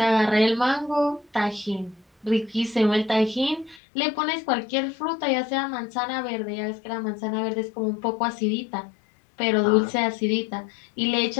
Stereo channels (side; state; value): right; drops out; at 3.8 s